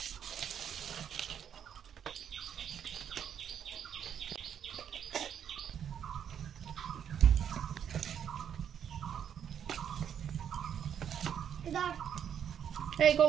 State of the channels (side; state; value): left; quieter; 8.8 dB